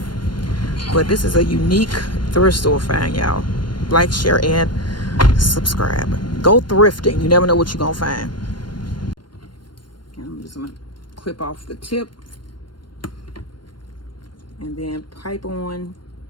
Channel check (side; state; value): right; late; 0.72 ms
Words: But this is a unique thrift store find, y'all. Like, share, and subscribe. Go thrifting. You never know what you're gonna find. And I'm just gonna clip off the tip and then pipe on